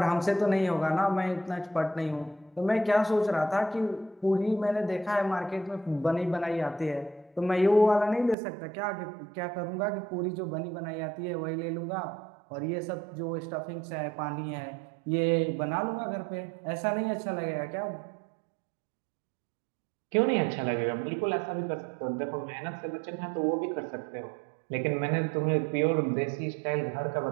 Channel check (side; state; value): left; drops out; at 8.3 s